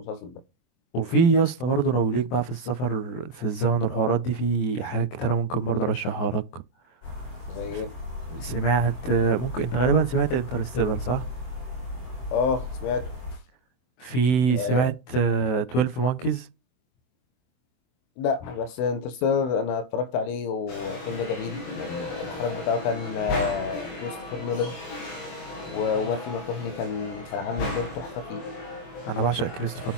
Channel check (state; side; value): late; right; 24 ms